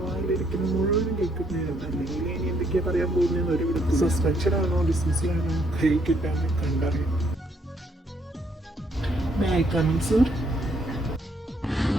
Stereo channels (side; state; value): both; normal; correlation 0.70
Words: വായിലിരിക്കുന്ന മുഴുവനും കേൾക്കുന്നതാണ്. അല്ലെങ്കിൽ ഇനി എന്തൊക്കെയാ പറയാൻ പോകുന്നതെന്ന് ഒരു വിധത്തിൽ സസ്പെൻഷൻ ആണോ ഡിസ്മിസിലാണോ കൈ കിട്ടാൻ കണ്ടറിയാം.